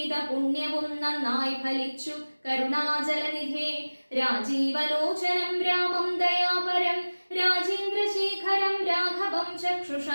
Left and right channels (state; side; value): inverted; both; correlation -1.00